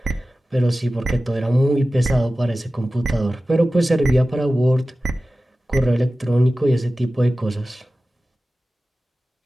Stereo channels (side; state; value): both; normal; correlation 0.96